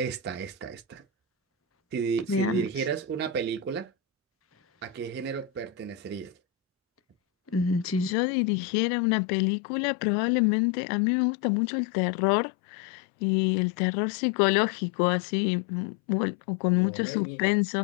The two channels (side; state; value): right; drops out; at 8.2 s